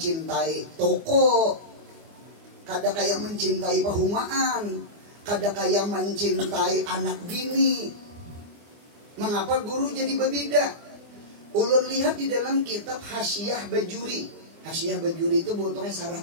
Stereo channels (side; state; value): left; late; 24 ms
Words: toko. Kada kayak mencintai perumahan. Kada kayak mencintai anak bini. Mengapa guru jadi berbeda? Ulun lihat di dalam kitab Hasyiah Bajuri. Hasyiah Bajuri itu bentuknya sarah